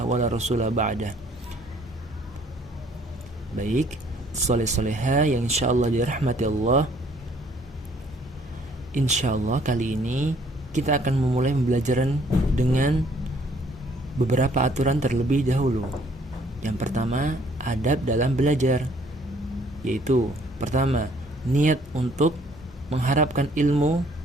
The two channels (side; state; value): both; normal; correlation 0.61